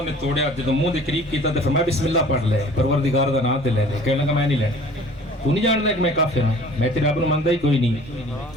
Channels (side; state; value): both; normal; correlation 0.49